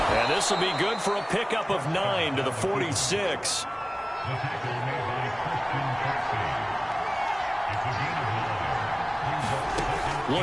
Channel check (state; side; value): identical; both; correlation 1.00